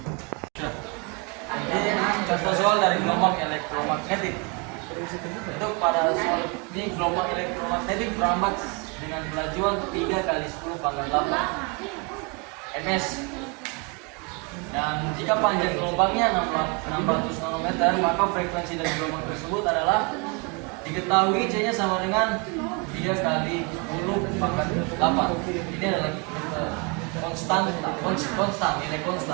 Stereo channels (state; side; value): quieter; left; 32.0 dB